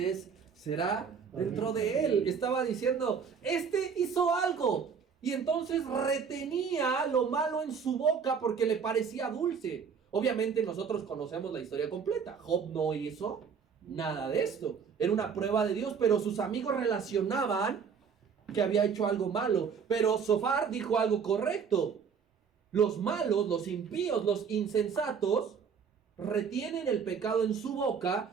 será dentro de él. Estaba diciendo, este hizo algo, y entonces retenía lo malo en su boca porque le parecía dulce. Obviamente nosotros conocemos la historia completa. Job no hizo nada de esto. Era una prueba de Dios, pero sus amigos relacionaban que había hecho algo malo. Pero Zofar dijo algo correcto. Los malos, los impíos, los insensatos retienen el pecado en su boca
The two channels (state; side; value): quieter; left; 6.4 dB